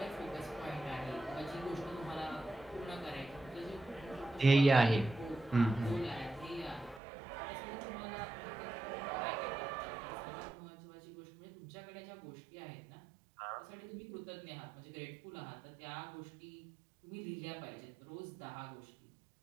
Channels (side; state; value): left; drops out; at 7.0 s